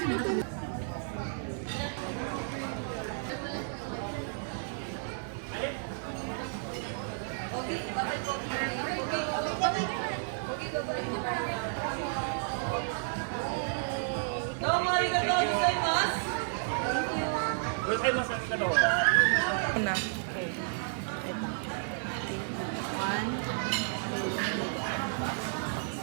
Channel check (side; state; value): left; silent; 56 dB below the other